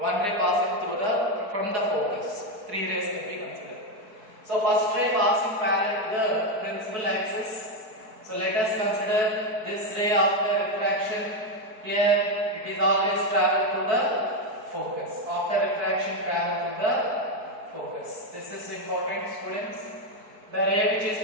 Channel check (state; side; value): late; left; 4.6 ms